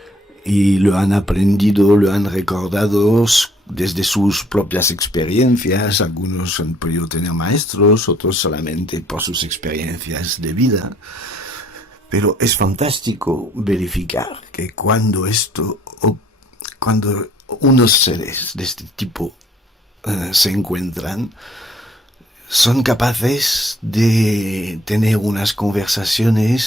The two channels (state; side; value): normal; both; correlation 0.61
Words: y lo han aprendido, lo han recordado desde sus propias experiencias. Algunos han podido tener maestros, otros solamente por sus experiencias de vida. Pero es fantástico verificar que cuando unos seres de este tipo se encuentran, son capaces de tener unas